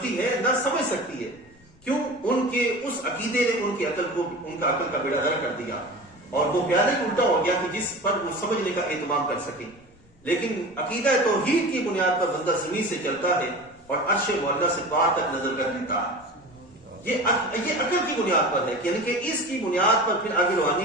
ہے، نہ سمجھ سکتی ہے. کیوں؟ ان کے اس عقیدے نے ان کی عقل کو، ان کا عقل کا بیڑا غرق کر دیا، اور وہ پیادہ ہی الٹا ہو گیا کہ جس پر وہ سمجھنے کا اہتمام کر سکیں. لیکن عقیدہ توحید کی بنیاد پر بندہ زمین سے چلتا ہے اور عرش معلیٰ سے پار تک نظر کر لیتا ہے. یہ عقل کی بنیاد پر ہے، یعنی کہ اس کی بنیاد پر پھر آگے روحانی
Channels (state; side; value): noise; left; rumble, 30 dB below the sound